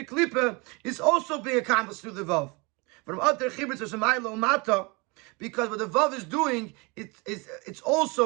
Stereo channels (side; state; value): left; quieter; 28.1 dB